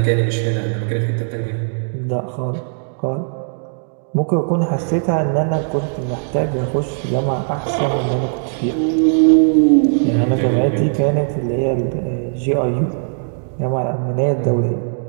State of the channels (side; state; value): left; silent; digital silence